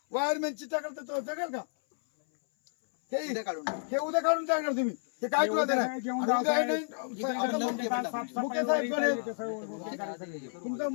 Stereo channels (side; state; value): right; silent; 57 dB below the other